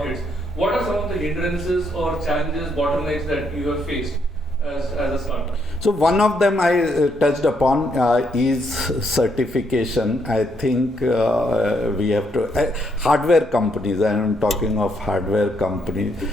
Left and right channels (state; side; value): normal; both; correlation 0.74